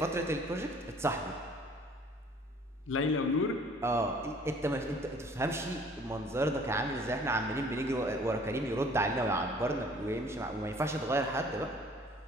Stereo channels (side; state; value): both; normal; correlation 0.54